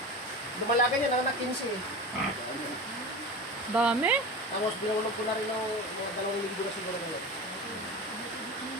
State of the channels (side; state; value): both; normal; correlation 0.29